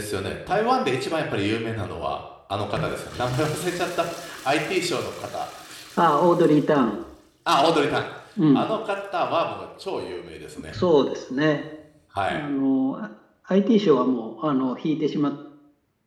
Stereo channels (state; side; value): identical; both; correlation 1.00